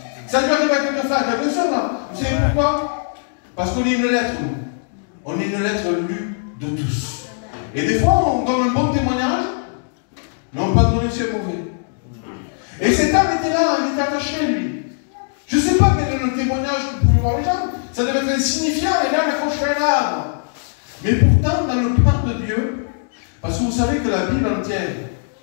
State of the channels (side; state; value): right; silent; digital silence